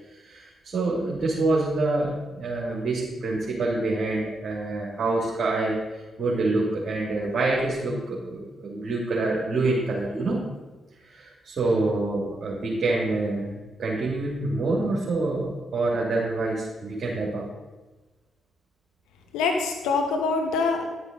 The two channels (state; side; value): normal; both; correlation 0.78